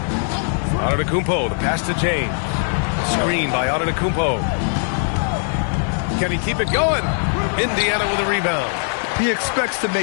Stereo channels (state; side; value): silent; right; 56 dB below the other